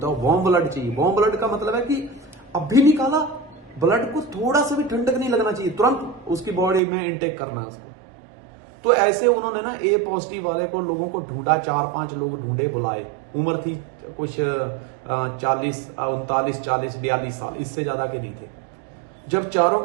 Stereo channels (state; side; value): drops out; left; at 6.8 s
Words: है, वार्म ब्लड चाहिए। वार्म ब्लड का मतलब है कि अभी निकाला ब्लड को थोड़ा सा भी ठंडक नहीं लगना चाहिए, तुरंत उसकी बॉडी में इनटेक करना है उसको। तो ऐसे उन्होंने ना ए पॉजिटिव वाले को, लोगों को ढूंढा, 4-5 लोग ढूंढे, बुलाए। उम्र थी कुछ 40, 39, 40, 42 साल, इससे ज्यादा के नहीं थे। जब चारों